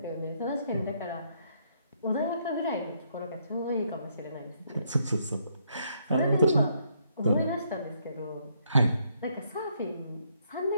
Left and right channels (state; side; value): inverted; both; correlation -0.73